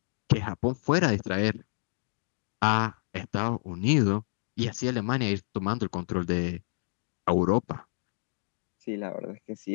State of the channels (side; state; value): right; silent; digital silence